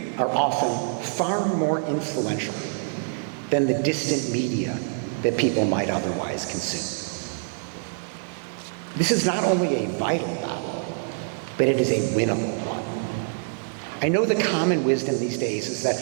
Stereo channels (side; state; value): left; silent; digital silence